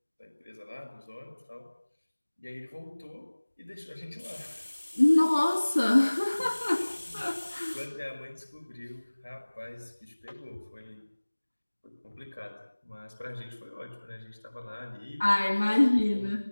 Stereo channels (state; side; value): inverted; both; correlation -1.00